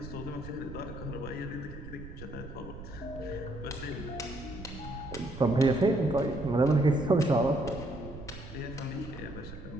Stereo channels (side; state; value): right; noise; rumble, 12 dB below the sound